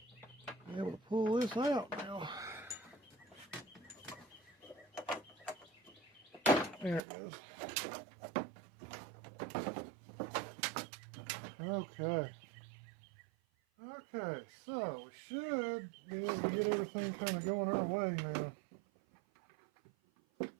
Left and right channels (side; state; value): left; drops out; at 7.0 s